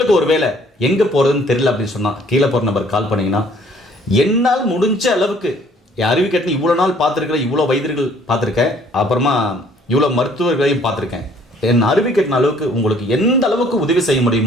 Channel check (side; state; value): both; normal; correlation 0.59